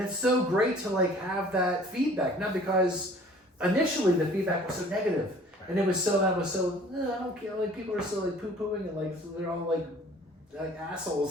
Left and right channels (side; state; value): both; normal; correlation 0.51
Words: it's so great to like have that feedback. Not because initially the feedback was so negative, and it was so I don't care. Like people are still like poo pooing and like they're all like